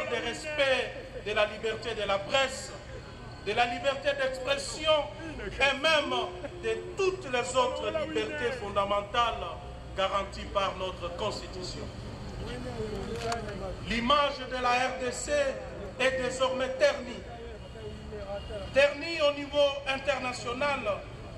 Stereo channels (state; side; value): identical; both; correlation 1.00